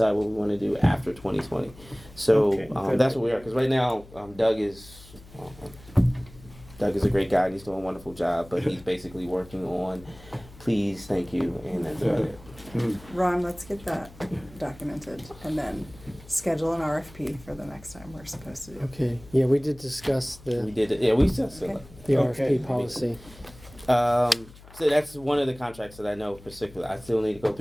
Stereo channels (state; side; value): noise; left; hum, 21 dB below the sound